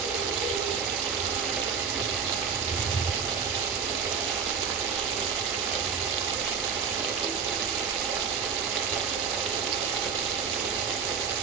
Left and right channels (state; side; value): quieter; left; 6.5 dB